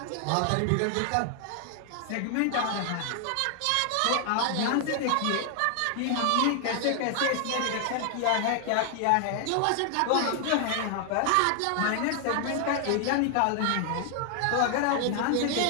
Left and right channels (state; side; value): different; both; correlation 0.00